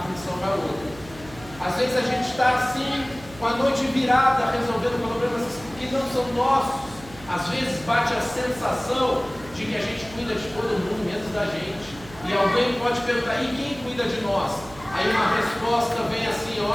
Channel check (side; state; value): right; noise; hum, 19 dB below the sound